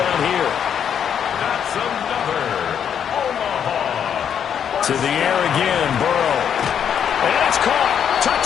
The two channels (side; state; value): right; quieter; 8.4 dB